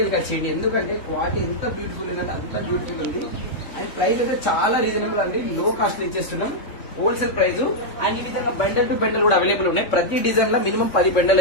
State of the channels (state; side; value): late; right; 3.7 ms